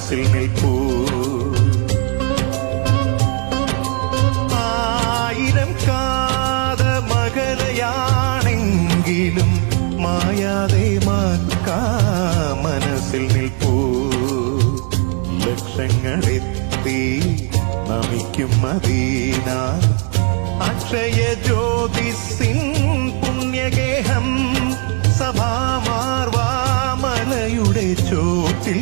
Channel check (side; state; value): left; quieter; 36.2 dB